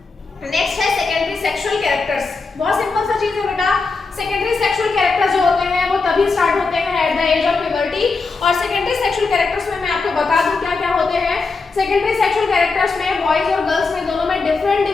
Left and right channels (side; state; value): right; quieter; 4.2 dB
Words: नेक्स्ट है सेकेंडरी सेक्सुअल कैरेक्टर्स। बहुत सिंपल सा चीज है बेटा, सेकेंडरी सेक्सुअल कैरेक्टर्स जो होते हैं वो तभी स्टार्ट होते हैं at the age of puberty. और सेकेंडरी सेक्सुअल कैरेक्टर्स में मैं आपको बता दूं क्या क्या होते हैं। सेकेंडरी सेक्सुअल कैरेक्टर्स में बॉयज और गर्ल्स में दोनों में डिफरेंट